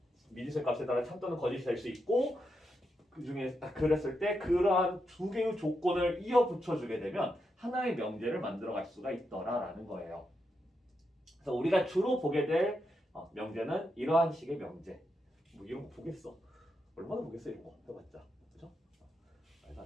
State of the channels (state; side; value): normal; both; correlation 0.84